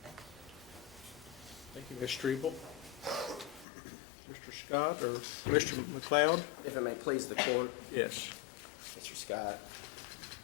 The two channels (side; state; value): right; drops out; at 3.7 s